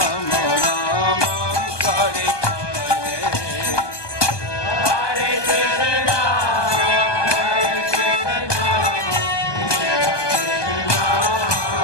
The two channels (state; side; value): late; right; 1.2 ms